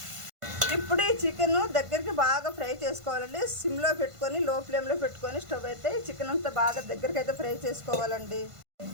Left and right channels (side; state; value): left; late; 1.5 ms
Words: ఇప్పుడు ఈ చికెన్ దగ్గరికి బాగా ఫ్రై చేసుకోవాలండి. సిమ్లో పెట్టుకొని లో ఫ్లేమ్లో పెట్టుకొని స్టవ్ అయితే ఈ చికెన్ అంతా బాగా దగ్గరికి అయితే ఫ్రై చేసుకోవాలండి.